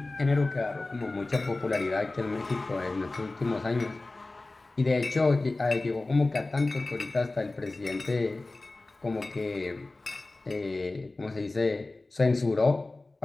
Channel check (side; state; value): right; quieter; 3.1 dB